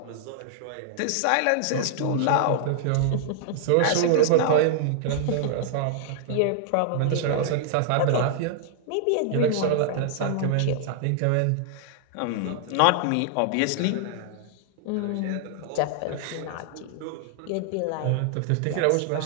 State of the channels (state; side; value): different; both; correlation -0.01